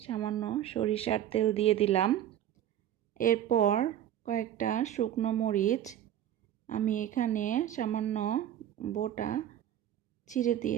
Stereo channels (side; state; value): left; quieter; 11.2 dB